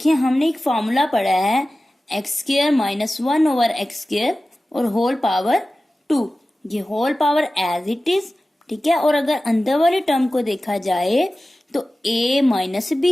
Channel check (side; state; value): both; normal; correlation 0.96